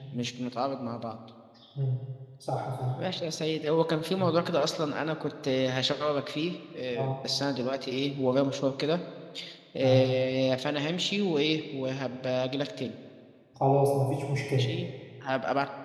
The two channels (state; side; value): identical; both; correlation 1.00